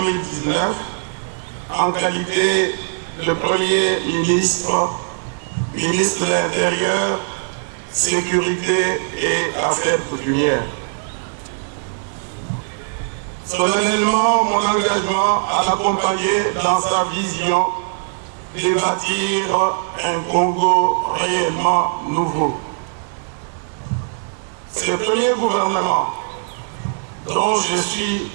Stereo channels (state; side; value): silent; left; digital silence